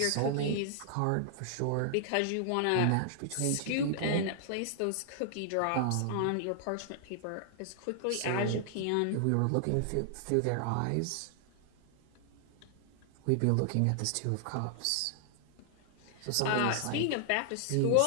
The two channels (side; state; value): both; different; correlation 0.00